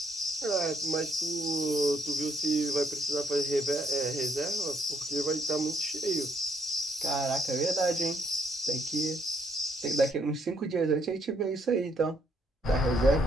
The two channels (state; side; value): normal; both; correlation 0.71